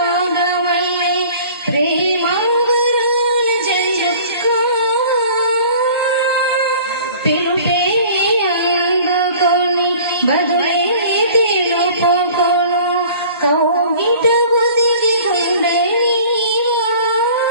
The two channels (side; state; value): both; inverted; correlation -0.47